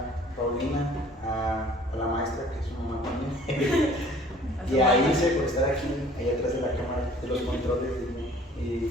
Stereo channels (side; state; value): both; normal; correlation 0.52